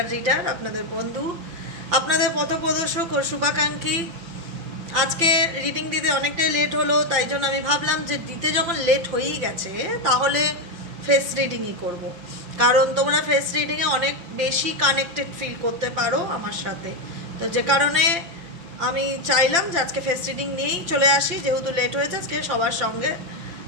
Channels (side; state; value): left; late; 5.9 ms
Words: রিডার, আপনাদের বন্ধু, আপনাদের পথপ্রদর্শক ও শুভাকাঙ্ক্ষী। আজকে রিডিং দিতে অনেকটাই লেট হলো, তাই জন্য আমি ভাবলাম যে দিতে যখন লেট হয়েই গেছে তাহলে ফেস রিডিংই করব। কারণ তোমরা ফেস রিডিংয়ে অনেক বেশি কানেক্টেড ফিল করতে পারো আমার সাথে, তো যে কারণে আমি চাইলাম যে আজকে ফেস রিডিং নিয়েই চলে আসি। যেহেতু লেট হয়েছে, আজকে সবার সঙ্গে